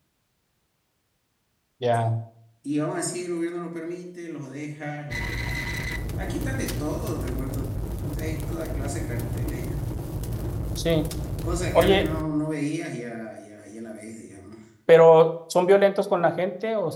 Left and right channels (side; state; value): both; identical; correlation 1.00